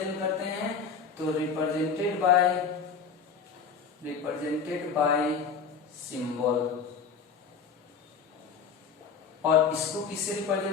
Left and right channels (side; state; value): right; quieter; 5.8 dB